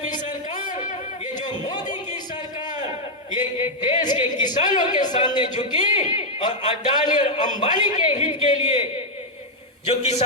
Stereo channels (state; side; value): normal; both; correlation -0.01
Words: सरकार, ये जो मोदी की सरकार, ये देश के किसानों के सामने झुकी और अडानी और अंबानी के हित के लिए जो